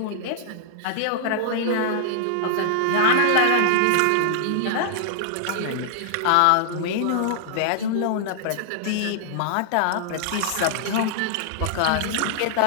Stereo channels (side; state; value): both; different; correlation -0.01